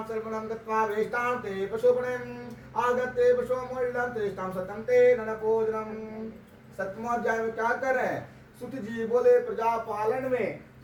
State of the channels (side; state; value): both; identical; correlation 1.00